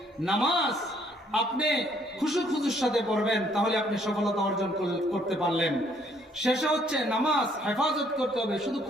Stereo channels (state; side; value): normal; both; correlation 0.65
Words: নামাজ আপনি খুশুর সাথে পড়বেন, তাহলে আপনি সফলতা অর্জন করতে পারলেন। শেষে হচ্ছে নামাজ হেফাজত করতে হবে, শুধু